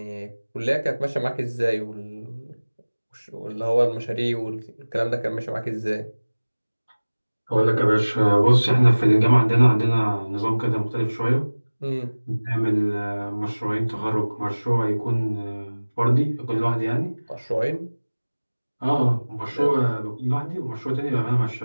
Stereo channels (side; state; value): both; inverted; correlation -1.00